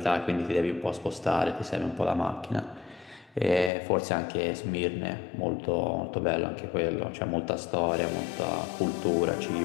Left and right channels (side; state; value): right; drops out; at 3.7 s